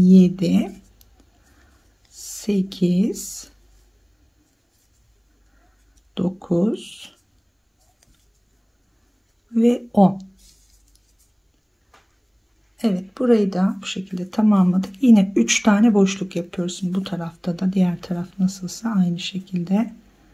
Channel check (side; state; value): both; identical; correlation 1.00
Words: 8, 9 ve 10. Evet, burayı da bu şekilde tamamladık. Yine 3 tane boşluk yapıyoruz. Bu tarafta da, diğer taraf nasılsa aynı şekilde.